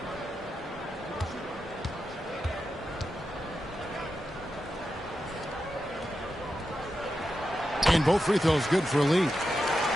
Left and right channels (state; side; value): normal; both; correlation 0.89